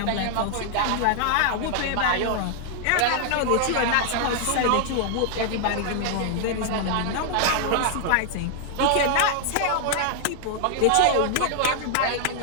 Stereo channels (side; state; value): both; different; correlation 0.00